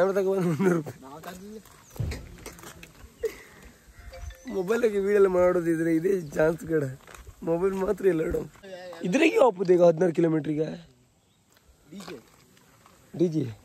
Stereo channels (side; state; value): both; identical; correlation 1.00